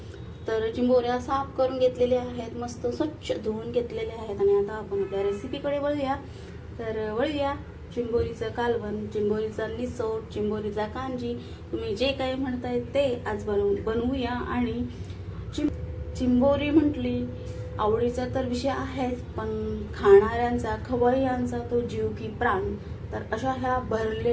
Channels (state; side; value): identical; both; correlation 1.00